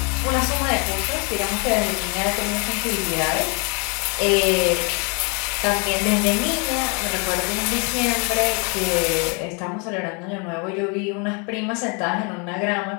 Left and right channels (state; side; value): quieter; right; 34.2 dB